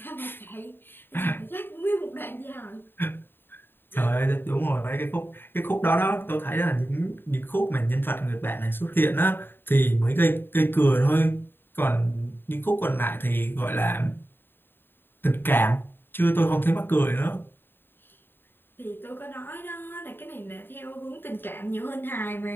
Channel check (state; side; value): late; right; 0.098 ms